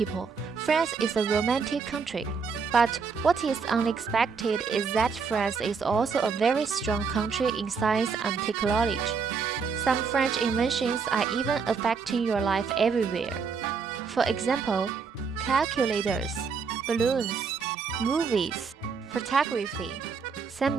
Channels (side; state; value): left; quieter; 5.5 dB